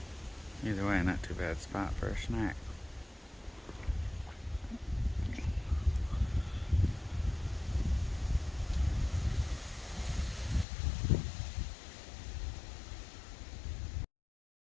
Either way, not too bad spot for a snack.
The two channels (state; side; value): drops out; right; at 10.7 s